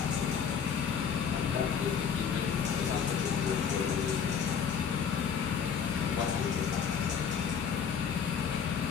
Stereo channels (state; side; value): quieter; right; 7.1 dB